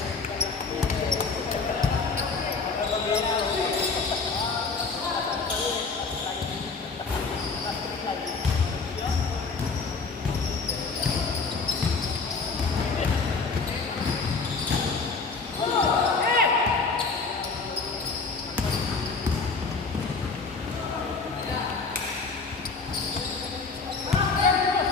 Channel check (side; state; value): right; quieter; 4.5 dB